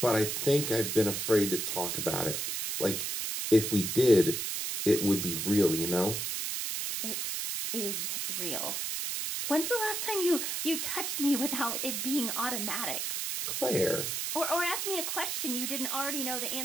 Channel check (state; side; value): noise; right; hiss, 2 dB below the sound